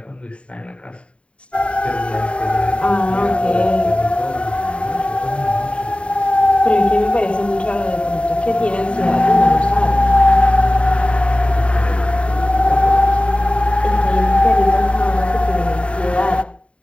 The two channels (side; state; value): right; late; 0.059 ms